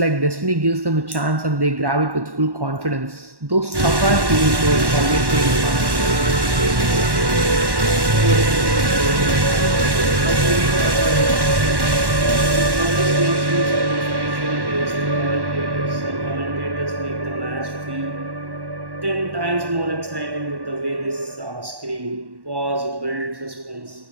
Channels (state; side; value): late; left; 1.1 ms